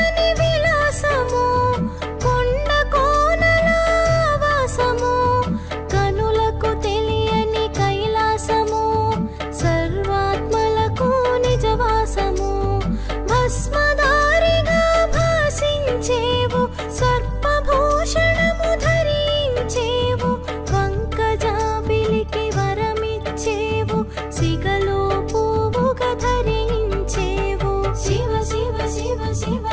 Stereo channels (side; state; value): both; identical; correlation 1.00